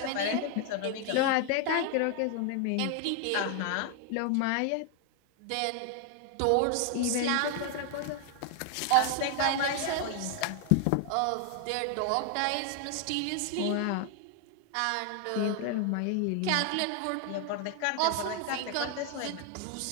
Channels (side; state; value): both; different; correlation 0.00